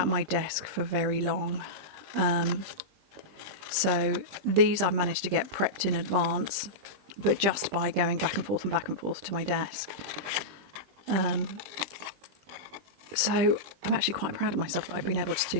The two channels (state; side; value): late; left; 20 ms